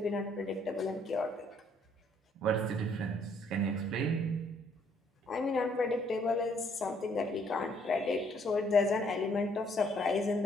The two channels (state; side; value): normal; both; correlation 0.66